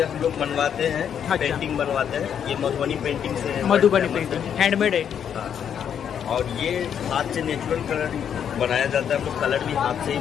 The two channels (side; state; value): right; quieter; 8.5 dB